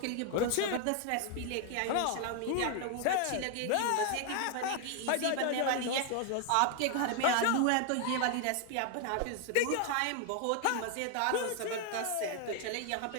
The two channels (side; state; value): both; different; correlation 0.01